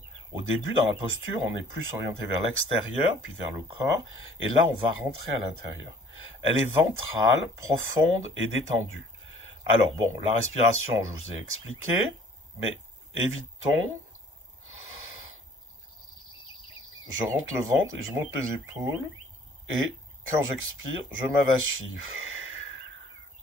Au début, dans la posture, on est plus orienté vers l'extérieur, puis vers le corps, et là, on va rentrer à l'intérieur. Elle est ventrale, profonde et détendue. Alors, bon, la respiration, je vous ai expliqué, mais évitons. Je rentre le ventre et je monte les épaules, et quand j'expire, je m'avachis.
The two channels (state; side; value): normal; both; correlation 0.54